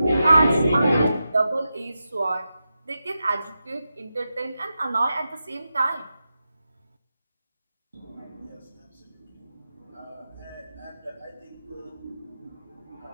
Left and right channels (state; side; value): inverted; both; correlation -0.90